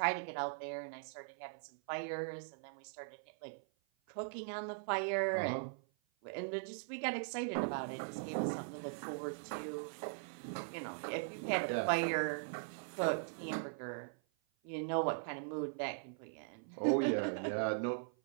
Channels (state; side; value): silent; left; 51 dB below the other